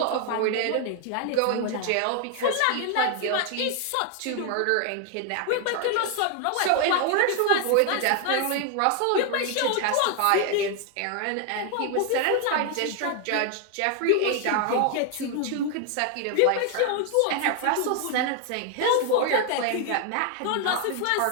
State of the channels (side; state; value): both; different; correlation 0.00